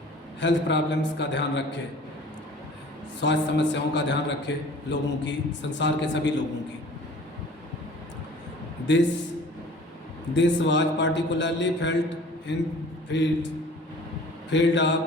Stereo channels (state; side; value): normal; both; correlation 0.47